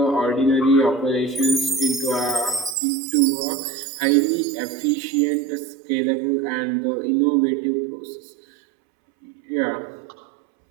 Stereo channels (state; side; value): drops out; left; at 2.8 s